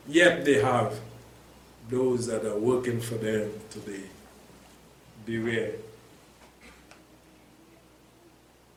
yet they have those that are working for them today. Beware.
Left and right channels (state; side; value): identical; both; correlation 1.00